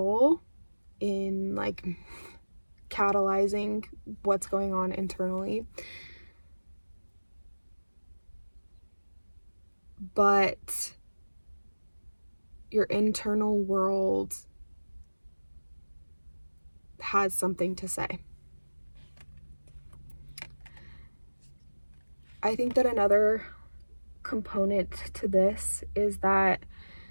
in like catalyzing what's going on internally. But your internal world has something to say. I think that another component to this is that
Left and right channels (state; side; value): inverted; both; correlation -1.00